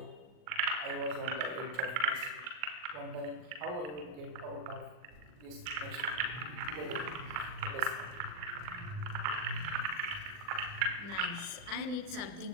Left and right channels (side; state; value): left; late; 40 ms